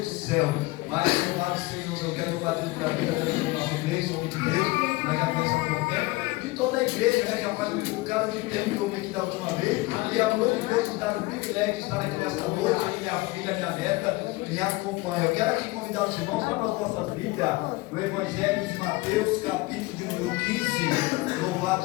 do céu. Mas louvado Senhor, eu quero louvar a Deus pela vida da nossa igreja, homem de Deus, nós já conhecemos há pouco tempo, de toda a igreja, já faz um bocado de tempo que eu vim aqui da última vez, e a glória de Deus nos dá o privilégio de estar aqui nesta noite, e minha filha, minha neta, me acompanha. Eu quero aqui convidar os irmãos para as nossas Bíblias, no Evangelho de Mateus, capítulo de número 15, louvado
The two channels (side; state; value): right; quieter; 21.8 dB